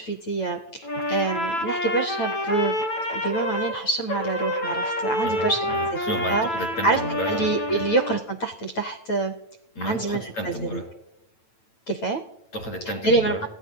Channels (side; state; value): right; late; 9.0 ms